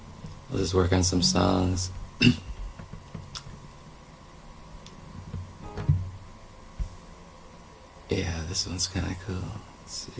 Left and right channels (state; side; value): identical; both; correlation 1.00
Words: I'll just work on some songs. Yeah, this one's kind of cool. Let's